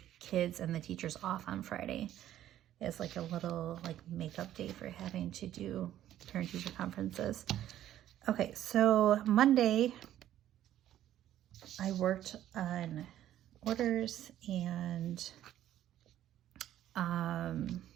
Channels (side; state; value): left; quieter; 12.2 dB